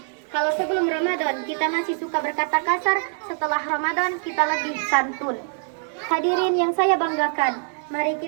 Kalau sebelum Ramadan kita masih suka berkata kasar, setelah Ramadan kita lebih santun. Hadirin yang saya banggakan, mari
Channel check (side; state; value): left; silent; 55 dB below the other